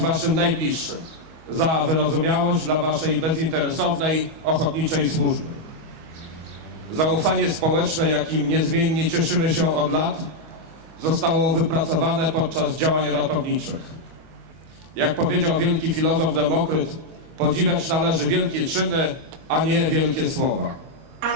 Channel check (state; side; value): late; left; 25 ms